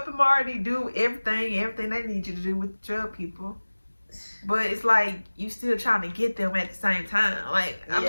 Marty do everything they need you to do with the drug people. But it's like, you still trying to get them at the same time. Like, I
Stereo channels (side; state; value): both; inverted; correlation -1.00